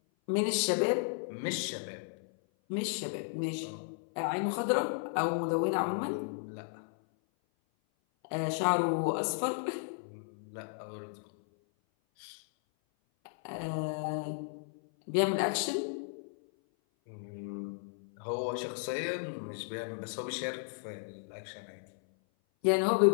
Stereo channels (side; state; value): right; silent; 55 dB below the other